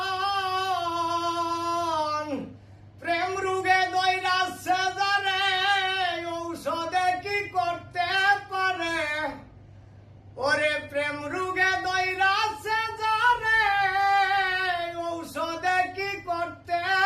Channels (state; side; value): identical; both; correlation 1.00